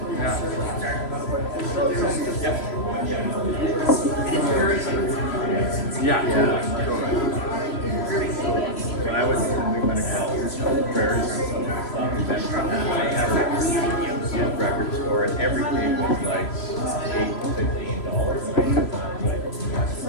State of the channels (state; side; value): late; right; 3.0 ms